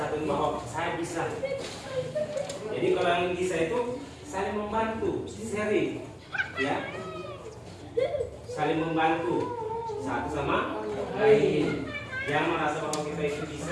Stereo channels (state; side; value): identical; both; correlation 1.00